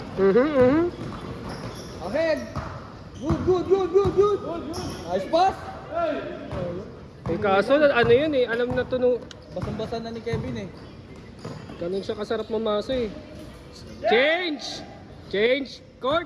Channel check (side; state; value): both; identical; correlation 1.00